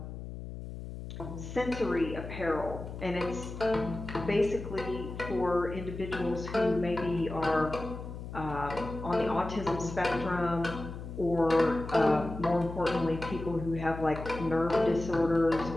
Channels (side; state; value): left; noise; hum, 9 dB below the sound